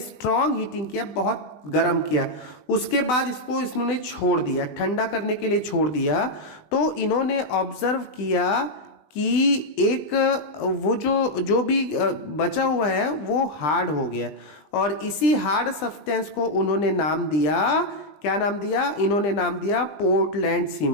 हीटिंग किया, बहुत गर्म किया। उसके बाद इसको इन्होंने छोड़ दिया, ठंडा करने के लिए छोड़ दिया। तो इन्होंने ऑब्जर्व किया कि एक वो जो भी बचा हुआ है वो हार्ड हो गया, और इसी हार्ड सब्सटेंस को उन्होंने नाम दिया, क्या नाम दिया, इन्होंने नाम दिया पोर्टलैंड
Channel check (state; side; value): late; right; 20 ms